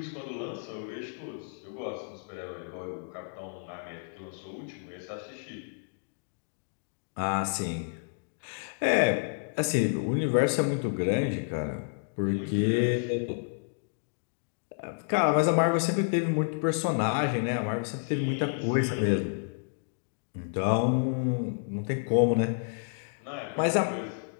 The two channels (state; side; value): silent; right; digital silence